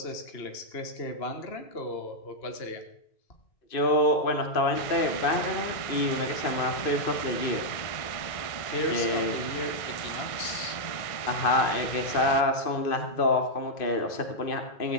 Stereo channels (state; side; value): late; right; 2.5 ms